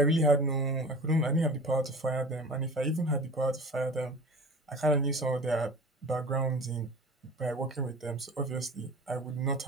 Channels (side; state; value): both; normal; correlation 0.38